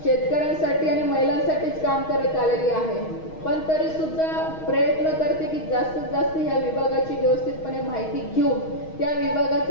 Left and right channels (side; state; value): right; late; 6.3 ms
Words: शेतकऱ्यांसाठी आणि महिलांसाठीच काम करत आलेली आहे. पण तरी सुद्धा प्रयत्न करते की जास्तीत जास्त ह्या विभागाची व्यवस्थितपणे माहिती घेऊन त्या